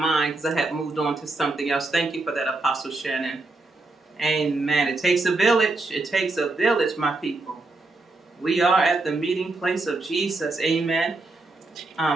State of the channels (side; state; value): left; quieter; 3.2 dB